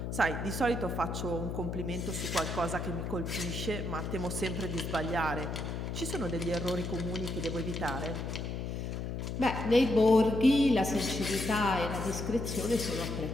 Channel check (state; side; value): noise; left; hum, 4 dB below the sound